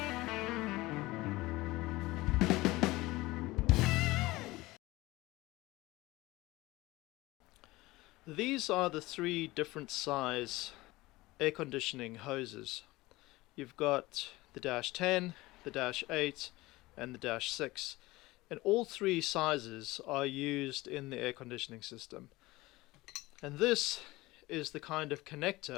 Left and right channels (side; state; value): right; quieter; 19.9 dB